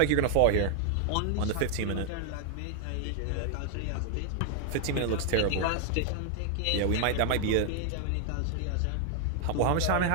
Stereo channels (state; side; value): different; both; correlation 0.00